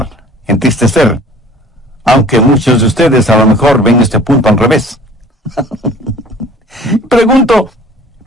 entristecer. Aunque muchos de ustedes a lo mejor ven este punto al revés. Pregunto,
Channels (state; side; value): normal; both; correlation 0.49